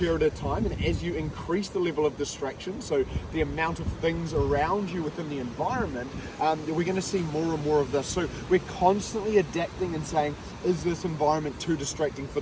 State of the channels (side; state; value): both; identical; correlation 1.00